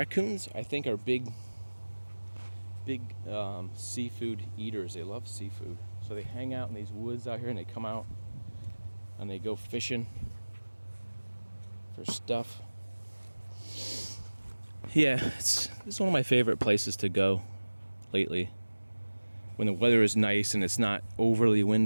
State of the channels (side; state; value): both; inverted; correlation -1.00